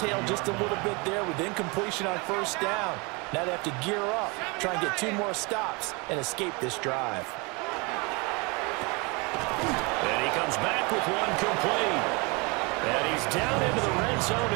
just a little bit there with incompletion on first down. Now they have to gear up, try and get 2 more stops, and escape this drive. And he comes back with one complete. And he's down into the red zone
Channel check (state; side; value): quieter; left; 28.6 dB